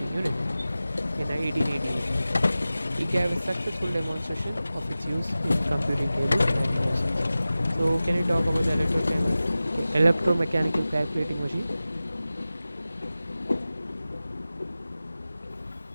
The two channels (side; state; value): both; inverted; correlation -0.96